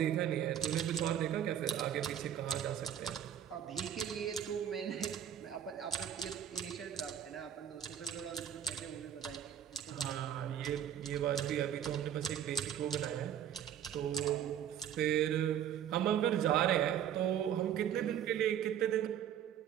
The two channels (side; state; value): left; quieter; 9.8 dB